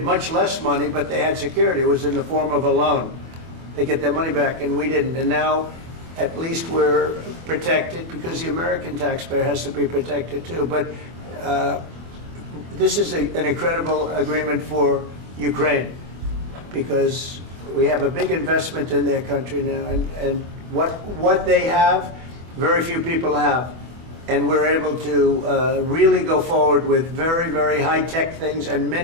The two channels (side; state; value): left; late; 24 ms